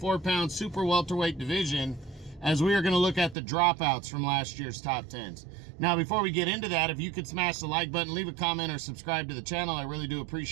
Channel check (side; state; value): left; drops out; at 3.4 s